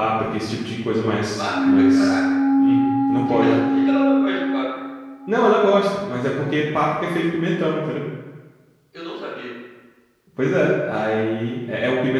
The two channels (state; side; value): identical; both; correlation 1.00